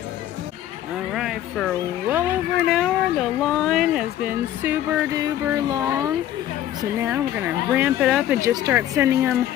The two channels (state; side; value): quieter; right; 12.4 dB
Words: Alright, for well over an hour, the line has been super duper long. So now we're going to ramp it up and just start sending them